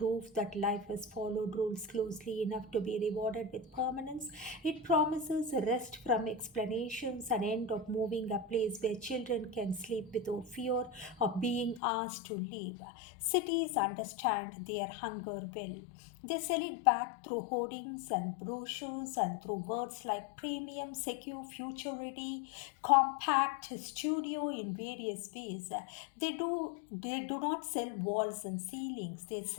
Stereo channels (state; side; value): drops out; right; at 11.8 s